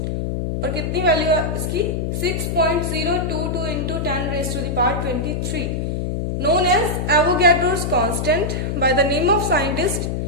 और कितनी वैल्यू है इसकी? 6.022 into 10 raised to the power 23, known as Avogadro's constant by the name of scientist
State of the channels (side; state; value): left; noise; hum, 2 dB below the sound